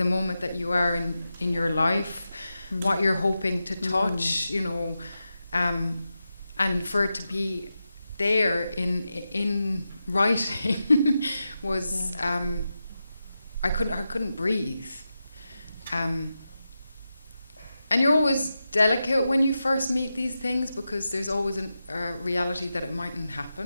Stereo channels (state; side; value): inverted; both; correlation -0.90